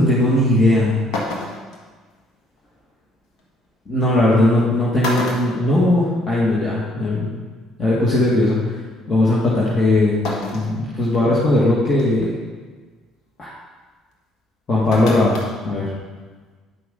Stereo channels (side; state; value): both; normal; correlation 0.69